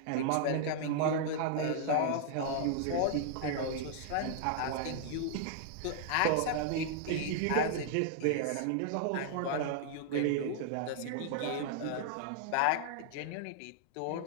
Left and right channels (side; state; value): both; different; correlation -0.01